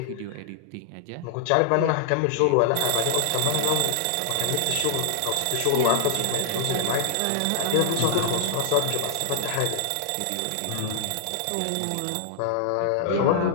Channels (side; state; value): both; different; correlation 0.00